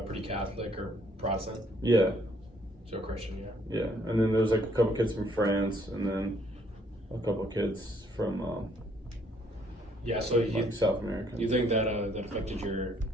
pretty Catholic or Protestant. Yeah. So Christian, yeah. Yeah, and then there's like a couple kids from France, and then a couple kids from Yeah, so like South America. you think that that affected your,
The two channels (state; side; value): normal; both; correlation 0.66